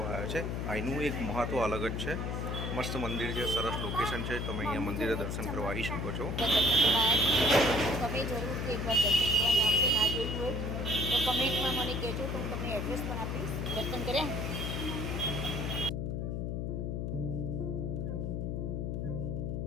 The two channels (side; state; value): left; noise; hum, 2 dB below the sound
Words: આવ્યા છે. અહીંનું એક મહત્વ અલગ જ છે. મસ્ત મંદિર છે, સરસ લોકેશન છે. તમે અહીંયા મંદિરે દર્શન કરવા આવી શકો છો. તમે જરૂરથી એકવાર દર્શન કરવા આવશો. ના જોયું હોય તો કમેન્ટમાં મને કહેજો, તો હું તમને એડ્રેસ પણ આપીશ. દર્શન કર્યા